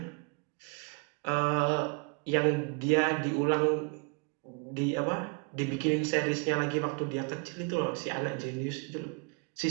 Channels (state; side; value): quieter; left; 34.3 dB